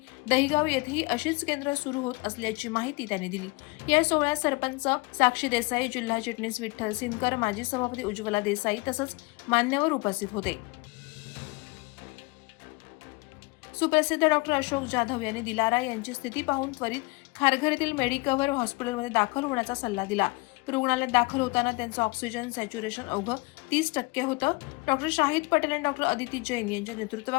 दहिगाव येथेही अशीच केंद्र सुरू होत असल्याची माहिती त्यांनी दिली। या सोहळ्यात सरपंच साक्षी देसाई, जिल्हा चिटणीस विठ्ठल सिनकर, माजी सभापती उज्ज्वला देसाई तसंच मान्यवर उपस्थित होते। सुप्रसिद्ध डॉ. अशोक जाधव यांनी दिलारा यांची स्थिती पाहून त्वरित खारघर येथील मेडिकव्हर हॉस्पिटलमध्ये दाखल होण्याचा सल्ला दिला। रुग्णालयात दाखल होताना त्यांचं ऑक्सिजन सॅच्युरेशन अवघं 30% होतं। डॉ. शाहिद पटेल आणि डॉ. अदिती जैन यांच्या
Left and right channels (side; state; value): right; quieter; 25.5 dB